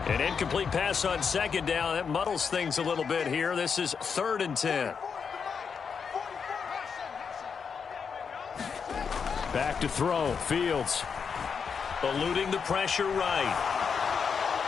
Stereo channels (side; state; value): right; quieter; 6.2 dB